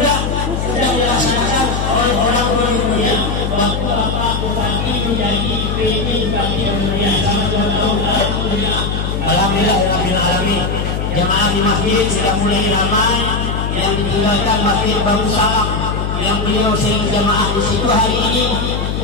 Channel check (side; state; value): left; noise; hum, 2 dB below the sound